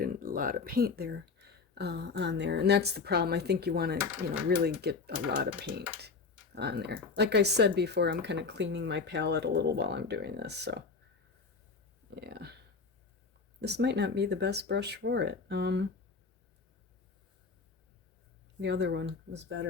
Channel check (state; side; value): quieter; right; 4.6 dB